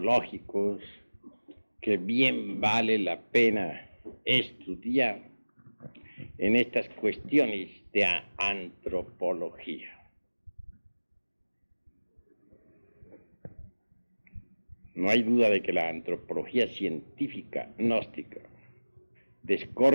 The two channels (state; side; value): inverted; both; correlation -1.00